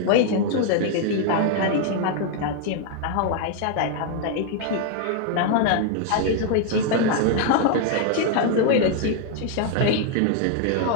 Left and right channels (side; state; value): both; different; correlation 0.00